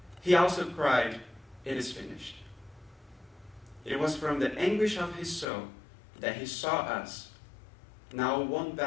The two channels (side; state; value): right; drops out; at 5.5 s